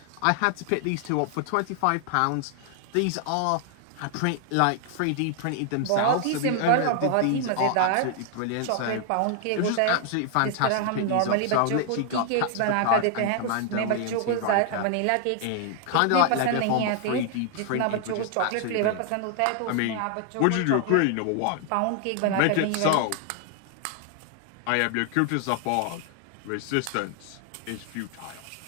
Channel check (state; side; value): different; both; correlation 0.00